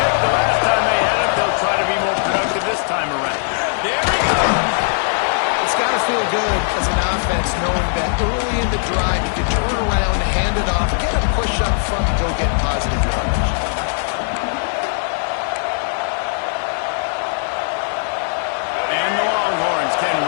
the last time they had it. They'll try to be more productive this time around. There we go. It's got to feel good as an offense knowing that early in the drive you can turn around, hand it off, get a push up front, and go get positive yardage. And the Longhorns can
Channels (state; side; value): silent; right; 67 dB below the other